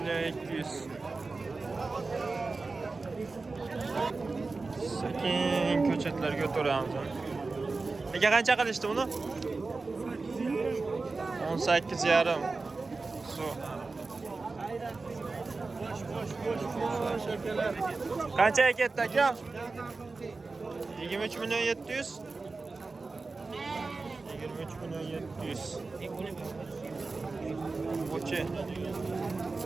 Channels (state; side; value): quieter; left; 3.8 dB